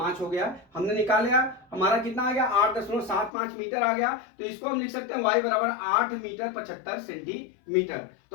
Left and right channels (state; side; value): drops out; right; at 3.3 s